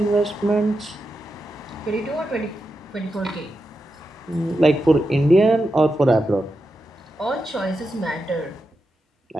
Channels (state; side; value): normal; both; correlation 0.88